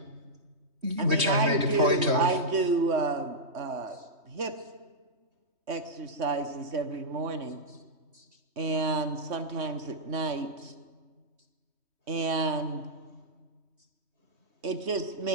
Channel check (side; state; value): left; late; 3.2 ms